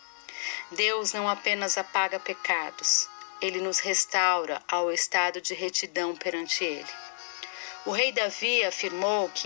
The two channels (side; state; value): right; silent; 58 dB below the other